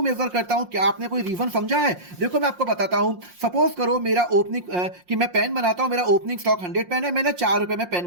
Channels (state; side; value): late; left; 5.6 ms